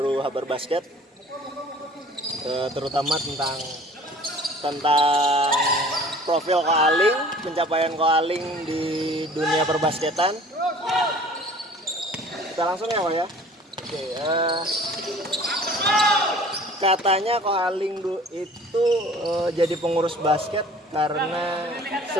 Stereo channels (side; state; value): both; normal; correlation 0.48